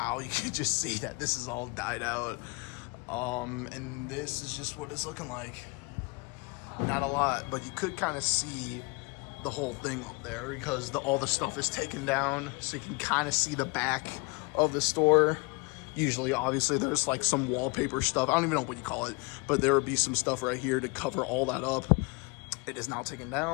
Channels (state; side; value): quieter; right; 28.7 dB